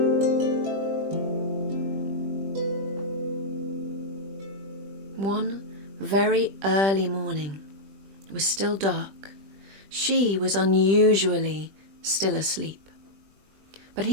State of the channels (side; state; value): left; late; 20 ms